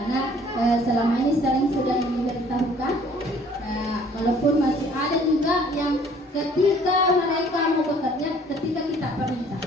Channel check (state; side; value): normal; both; correlation 0.56